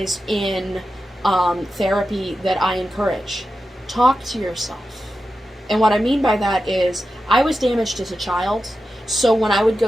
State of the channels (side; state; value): both; normal; correlation 0.91